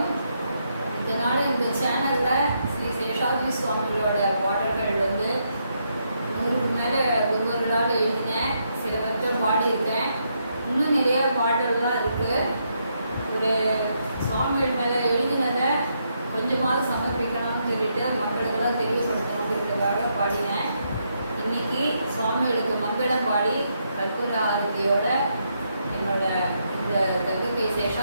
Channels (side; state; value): both; inverted; correlation -0.78